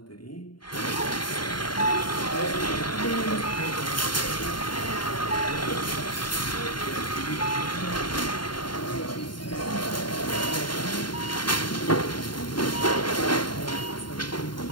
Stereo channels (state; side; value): late; right; 0.72 ms